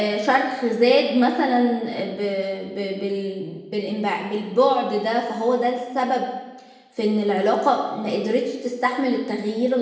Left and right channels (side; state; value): both; identical; correlation 1.00